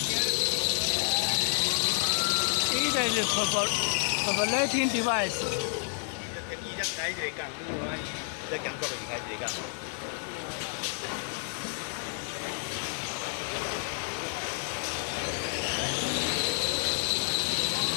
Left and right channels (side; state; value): right; silent; 58 dB below the other